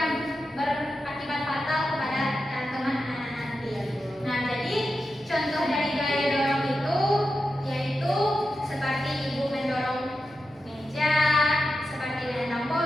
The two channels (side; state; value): both; normal; correlation 0.90